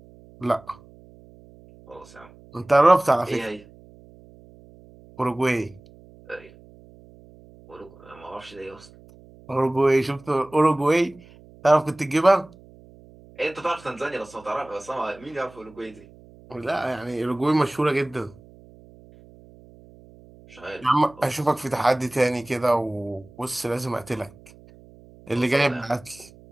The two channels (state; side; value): noise; right; hum, 23 dB below the sound